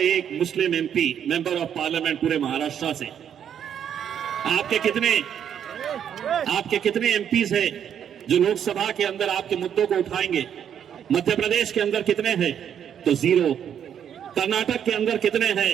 मुस्लिम एमपी, मेंबर ऑफ पार्लियामेंट पूरे महाराष्ट्र से। आपके कितने एमपीज हैं जो लोकसभा के अंदर आपके मुद्दों को उठाएंगे? मध्य प्रदेश के अंदर कितने हैं? तो 0। कर्नाटक के अंदर कितने हैं?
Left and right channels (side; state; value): left; quieter; 8.9 dB